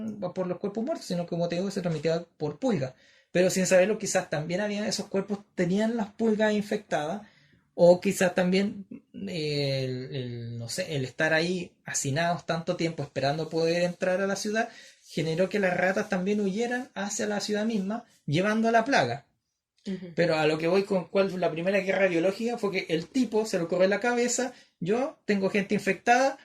por los cuerpos muertos, sino que, como te digo, se transmitía por pulgas. Pero sin saberlo, quizás también había esos cuerpos tenían las pulgas infectadas, o quizás también no sé, el estar ahí hacinados tanto tiempo esperando poder entrar a la ciudad generó que las ratas también huyeran hacia la ciudad misma, llevando la plaga. Ujú. Pero a lo que voy con cuál fue la primera guerra biológica fue que el tipo se lo corre en la cabeza, yo tengo gente infectada,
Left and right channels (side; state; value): both; identical; correlation 1.00